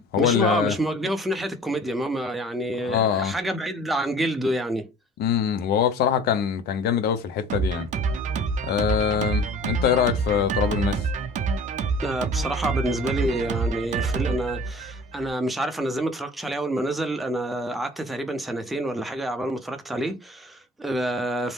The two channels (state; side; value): normal; both; correlation 0.46